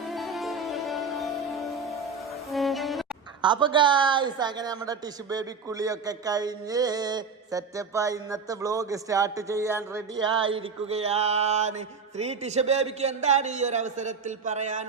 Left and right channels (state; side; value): quieter; left; 5.1 dB